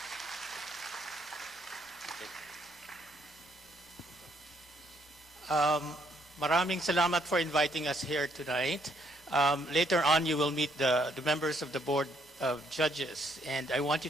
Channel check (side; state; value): both; normal; correlation 0.70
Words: Maraming salamat for inviting us here tonight. Later on, you will meet the members of the Board of Judges. And I want you